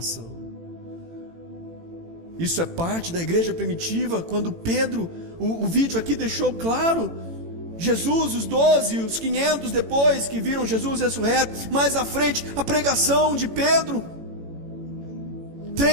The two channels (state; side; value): late; left; 18 ms